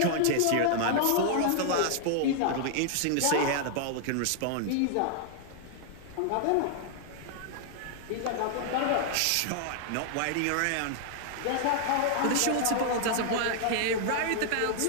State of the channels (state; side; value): different; both; correlation -0.01